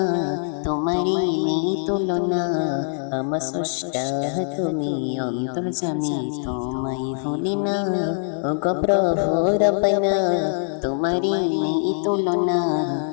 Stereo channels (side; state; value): right; silent; 64 dB below the other